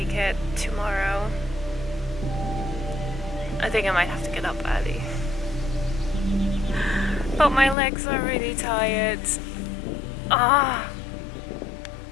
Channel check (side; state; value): right; drops out; at 7.8 s